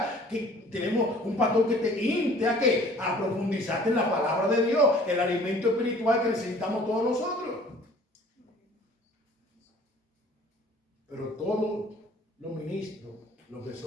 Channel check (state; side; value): normal; both; correlation 0.52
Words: Que tenemos un pastor que te inste a ¿qué? A profundizarte en la palabra de Dios, el alimento espiritual que necesitamos todos nosotros. Pero todos los ministros, lo que